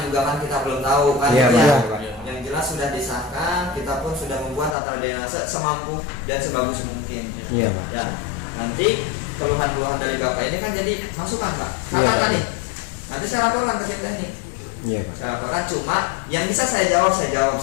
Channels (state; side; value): drops out; right; at 4.8 s